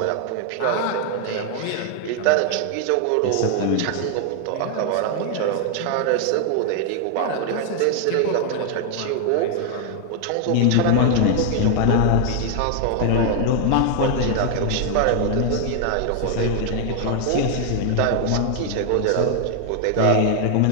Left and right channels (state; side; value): different; both; correlation 0.00